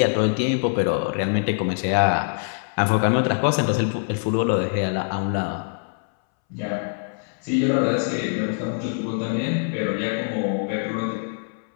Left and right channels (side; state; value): right; silent; 63 dB below the other